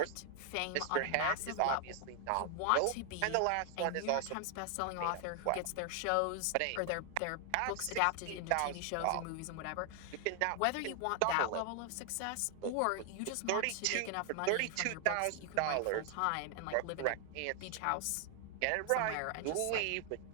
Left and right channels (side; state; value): both; different; correlation 0.00